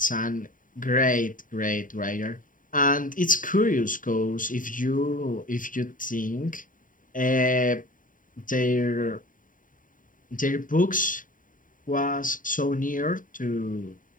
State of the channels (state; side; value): late; right; 0.39 ms